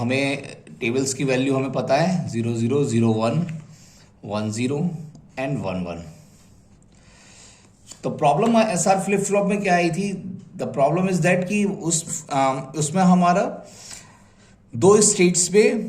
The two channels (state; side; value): identical; both; correlation 1.00